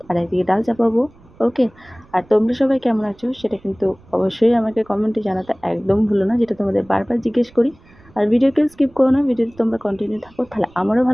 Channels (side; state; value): right; noise; rumble, 27 dB below the sound